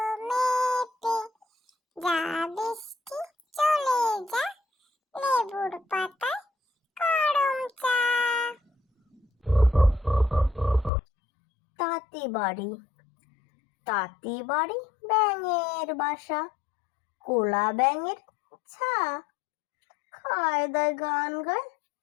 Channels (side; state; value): right; drops out; at 10.9 s